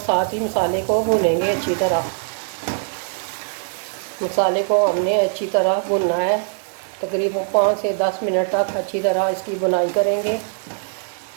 ही मसाले को भूनेंगे अच्छी तरह। मसाले को हमने अच्छी तरह भूनना है, तकरीबन 5 से 10 मिनट तक अच्छी तरह इसकी बुनाई करेंगे।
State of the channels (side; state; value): left; silent; digital silence